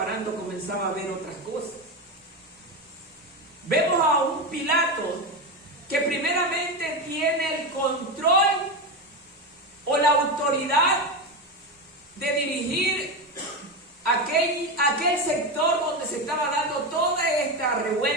comenzaba a ver otras cosas. Vemos a un Pilato que primeramente tiene el control o la autoridad de dirigir aquel sector donde se estaba dando toda esta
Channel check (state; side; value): normal; both; correlation 0.16